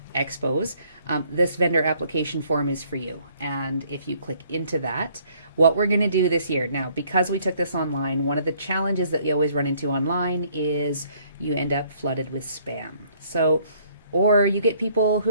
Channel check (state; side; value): inverted; both; correlation -0.64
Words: expos, this vendor application form is for you. And if you click into that, what we're going to do this year, now because we took this online, one of the challenges that you always run into online is you end up flooded with spam. So, or you get people who